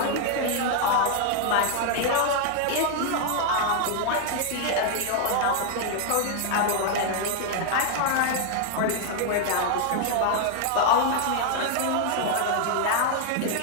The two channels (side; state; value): both; different; correlation 0.00